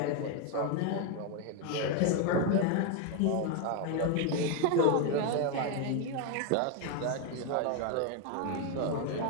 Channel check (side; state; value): both; different; correlation 0.01